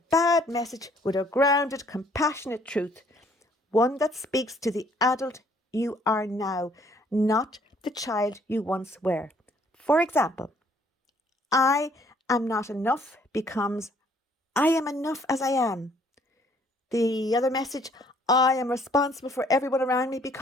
bad message with a grounded, compassionate truth. One that speaks to the adult you are now, not the child you once were. For example, I am not enough becomes I am enough as I am. The other message, I am responsible for everyone around me,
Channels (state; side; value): normal; both; correlation 0.62